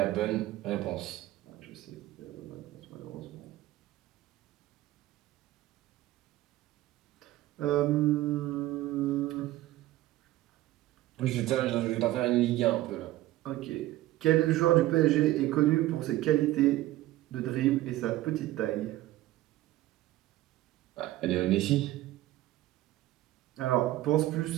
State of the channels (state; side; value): quieter; left; 15.9 dB